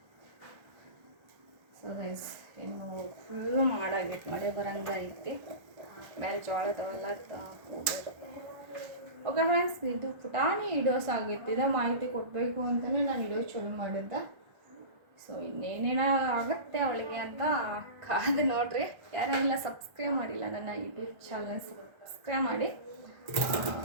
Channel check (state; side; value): late; left; 1.3 ms